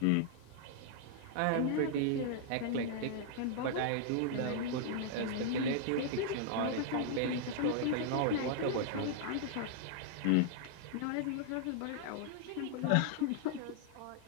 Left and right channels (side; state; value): both; different; correlation -0.01